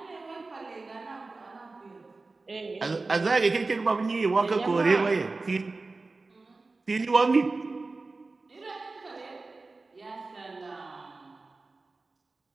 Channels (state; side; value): quieter; left; 3.6 dB